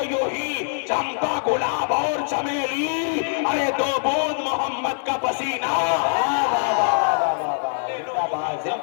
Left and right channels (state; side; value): silent; right; digital silence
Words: یوں ہی چمپا گلاب اور چمیلی. ارے دو بوند محمد کا پسینہ